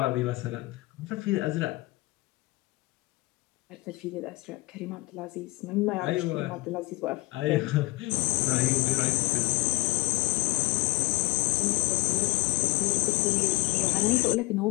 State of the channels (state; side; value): quieter; right; 22.8 dB